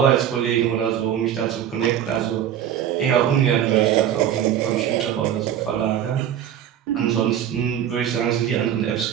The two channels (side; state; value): left; quieter; 10.1 dB